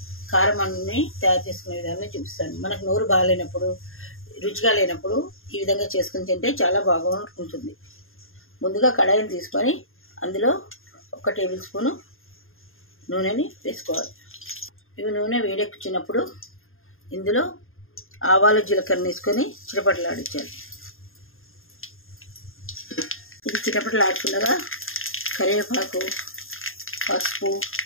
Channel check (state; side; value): late; right; 0.60 ms